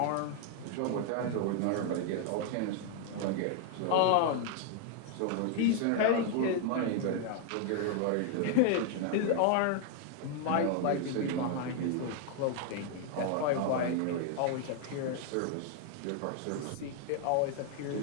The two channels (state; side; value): different; both; correlation 0.00